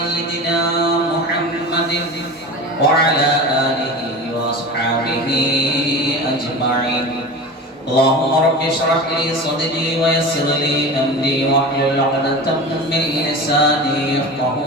محمد وعلى آله وأصحابه أجمعين. اللهم رب اشرح لي صدري ويسر لي أمري واحلل عقدة من لساني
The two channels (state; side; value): normal; both; correlation 0.31